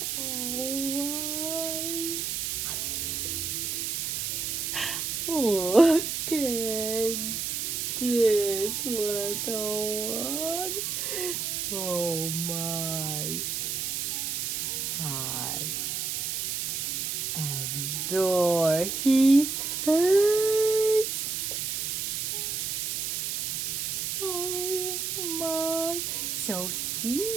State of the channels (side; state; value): right; noise; hiss, 1 dB below the sound